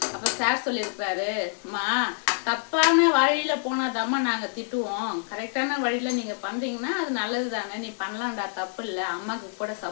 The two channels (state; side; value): silent; right; digital silence